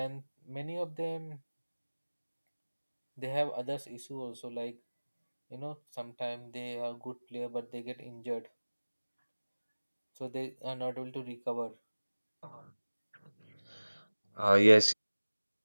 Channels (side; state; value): both; inverted; correlation -1.00